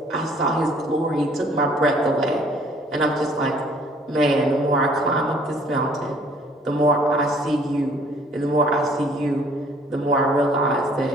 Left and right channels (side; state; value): both; normal; correlation 0.58